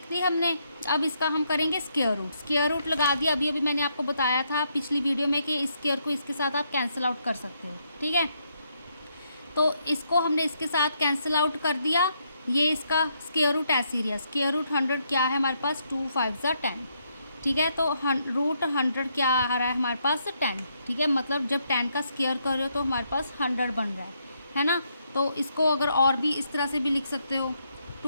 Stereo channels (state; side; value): inverted; both; correlation -0.76